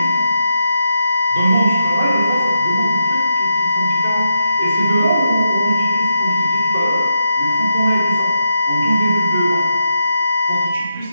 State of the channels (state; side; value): inverted; both; correlation -0.84